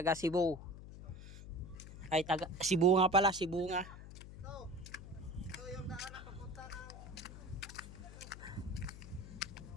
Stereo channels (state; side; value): noise; left; hum, 13 dB below the sound